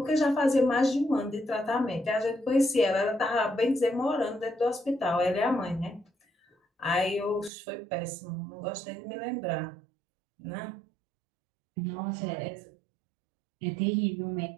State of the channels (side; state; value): left; drops out; at 7.5 s